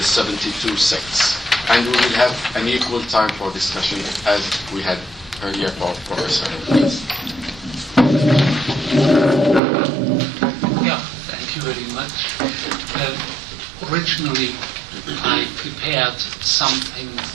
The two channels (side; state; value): left; drops out; at 9.6 s